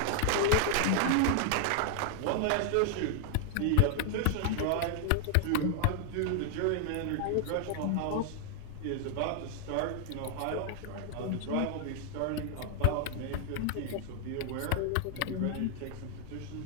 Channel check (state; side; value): different; both; correlation 0.00